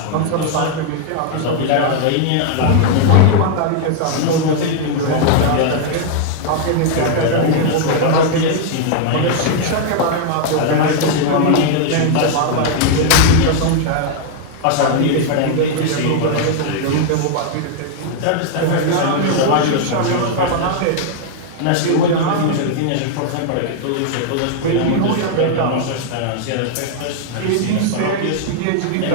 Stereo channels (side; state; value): both; different; correlation 0.00